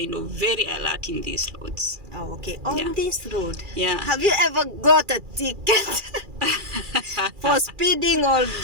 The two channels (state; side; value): late; left; 2.4 ms